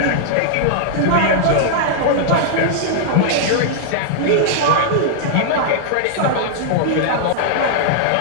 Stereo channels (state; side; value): different; both; correlation -0.01